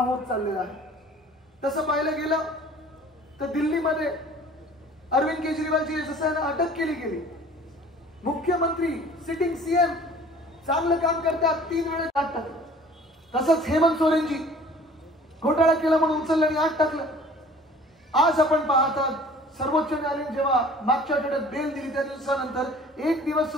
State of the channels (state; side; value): normal; both; correlation 0.49